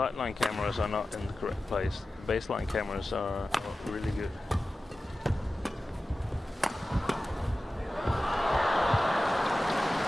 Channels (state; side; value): normal; both; correlation 0.95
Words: cameras are not in the correct place. The baseline cameras are really good.